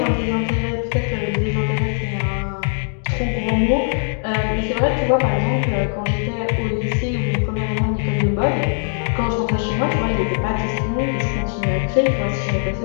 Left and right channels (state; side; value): silent; right; digital silence